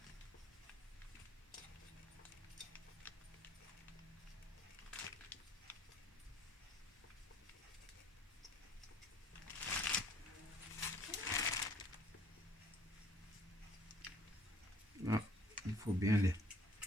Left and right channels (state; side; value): normal; both; correlation 0.59